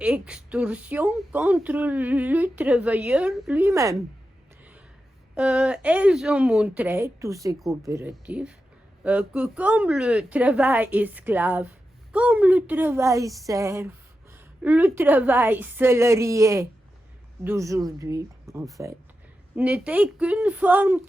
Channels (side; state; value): both; normal; correlation 0.90